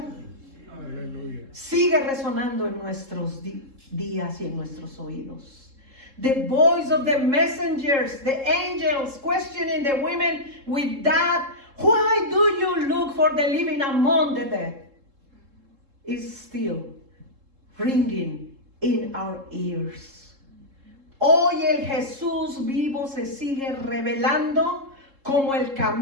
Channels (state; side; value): late; left; 3.7 ms